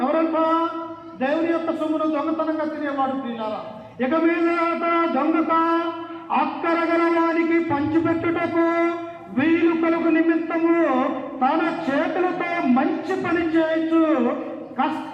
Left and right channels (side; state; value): both; identical; correlation 1.00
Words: ఎవరంట? దేవుని యొక్క సొమ్మును దొంగతనంగా తినేవాడు. ప్రియులారా, ఇక మీదట దొంగత అక్కరగల వారికి పంచిపెట్టుటకు వీలు కలుగు నిమిత్తము తన చేతులతో మంచి పని చేయొచ్చు